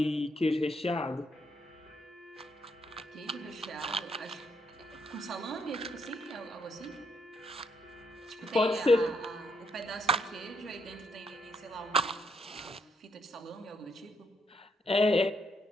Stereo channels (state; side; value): normal; both; correlation 0.75